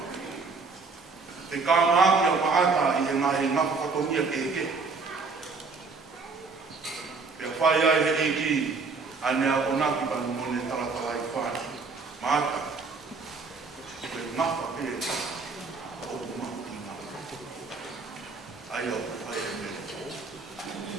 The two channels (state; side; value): quieter; left; 4.4 dB